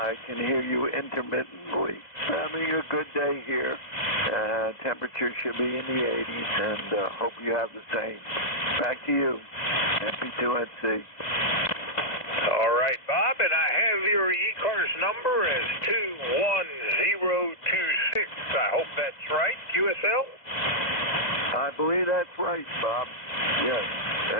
can hear you intermittently. Having a good day here. Temperature should be in the 80s, and hope you have the same. Back to you, MP2NC. All right, Bob, and I have your ECARS number as 21026. I hope that's right, QSL? I believe that's right, Bob. Yes,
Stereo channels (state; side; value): late; right; 2.0 ms